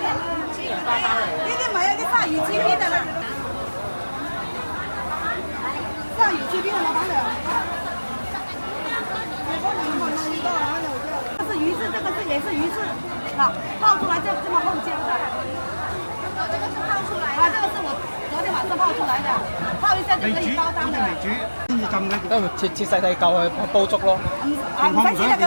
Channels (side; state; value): both; inverted; correlation -1.00